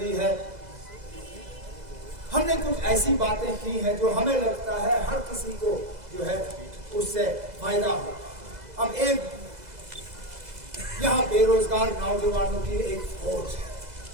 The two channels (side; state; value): left; late; 2.0 ms